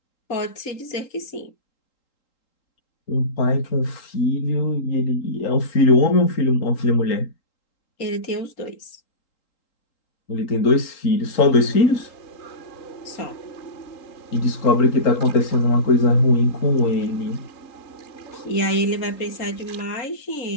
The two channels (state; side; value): late; right; 3.8 ms